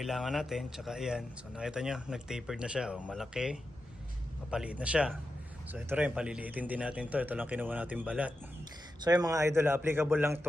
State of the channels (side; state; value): both; normal; correlation 0.89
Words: natin. Tsaka ayan. So nakita nyo, nag-tapered na siya. O, malaki. Papaliit na siya. So ito rin, paliliitin din natin to. Ito lang kinuha natin balat. So yung mga idol, applicable lang